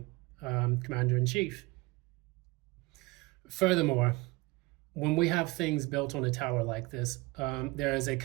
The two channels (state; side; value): quieter; left; 23.0 dB